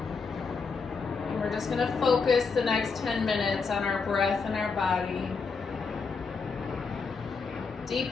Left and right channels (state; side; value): quieter; right; 4.9 dB